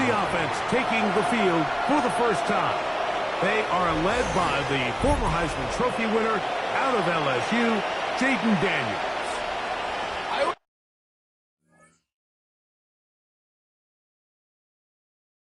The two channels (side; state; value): both; identical; correlation 1.00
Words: offense taking the field for the first time. They are led by the former Heisman Trophy winner out of LSU, Jaden Daniels.